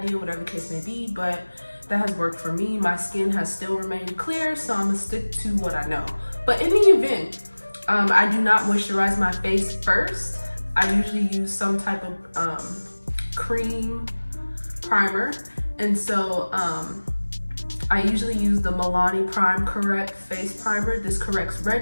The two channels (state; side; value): inverted; both; correlation -1.00